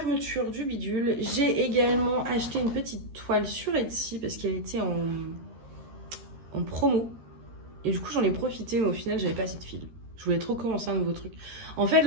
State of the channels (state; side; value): late; left; 13 ms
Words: du bidule. J'ai également acheté une petite toile sur Etsy parce qu'elle était en promo. Et du coup, j'en ai profité, mais au final, j'avais pas assez de fil. Je voulais trop commencer un nouveau truc. En fait,